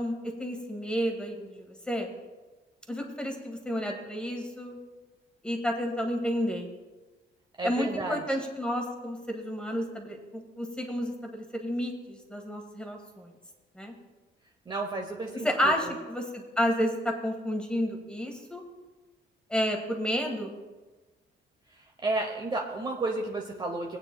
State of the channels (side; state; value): both; normal; correlation 0.72